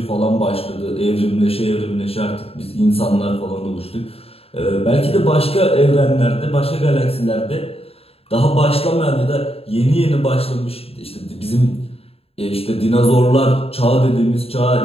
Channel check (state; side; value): late; right; 0.28 ms